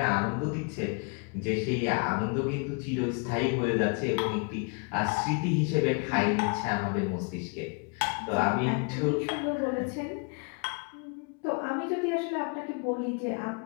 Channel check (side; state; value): right; quieter; 35.9 dB